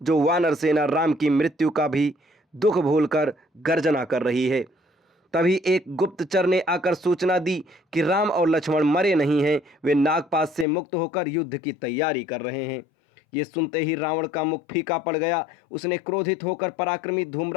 जो वानर सेना राम की मृत्यु का भी दुख भूलकर गर्जना कर रही है? तभी एक गुप्तचर ने आकर सूचना दी कि राम और लक्ष्मण मरे नहीं हैं, वे नागपाश से मुक्त होकर युद्ध की तैयारी कर रहे हैं। ये सुनते ही रावण का मुख फीका पड़ गया। उसने क्रोधित होकर पराक्रमी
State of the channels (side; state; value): right; drops out; at 10.7 s